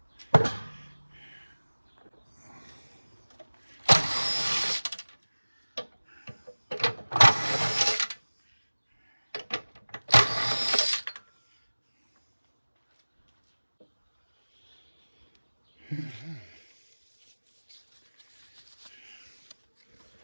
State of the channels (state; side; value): inverted; both; correlation -1.00